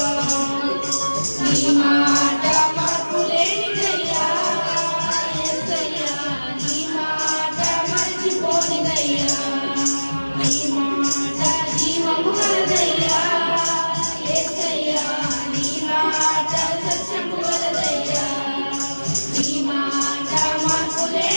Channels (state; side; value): inverted; both; correlation -1.00